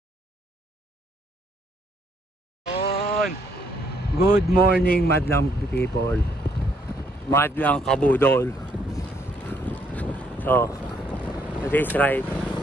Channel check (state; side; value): normal; both; correlation 0.70